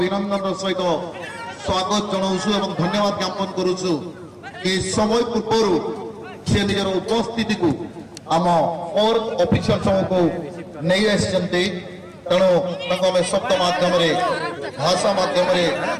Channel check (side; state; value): both; identical; correlation 1.00